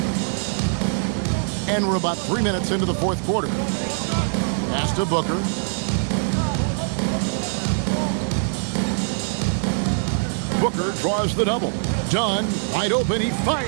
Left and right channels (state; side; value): silent; left; digital silence